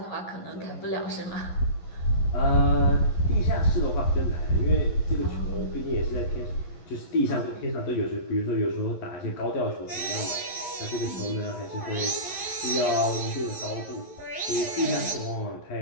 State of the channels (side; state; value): right; late; 11 ms